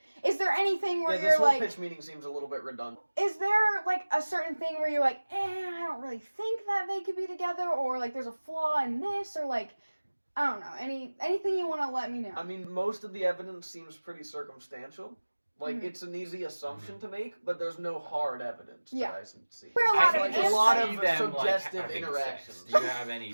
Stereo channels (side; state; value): both; inverted; correlation -1.00